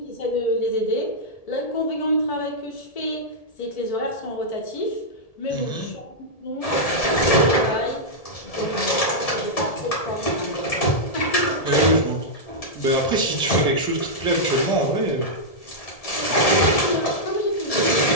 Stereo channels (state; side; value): late; right; 1.7 ms